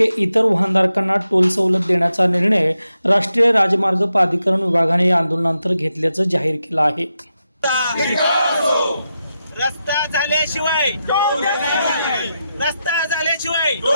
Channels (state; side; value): inverted; both; correlation -0.87